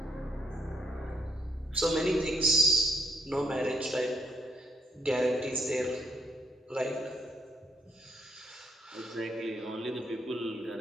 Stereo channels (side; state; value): both; normal; correlation 0.72